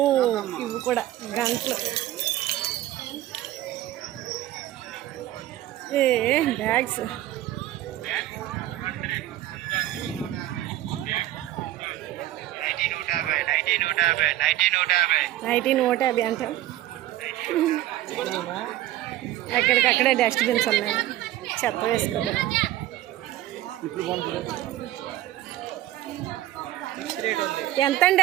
ఇవి కూడా గంటలు. బ్యాగ్స్ నైటీ 150 అంట. ఎక్కడికక్కడే డస్ట్బిన్స్ ఉన్నాయి, చెత్త వేసుకోవాలి. ఎంతండి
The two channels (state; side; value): quieter; left; 14.6 dB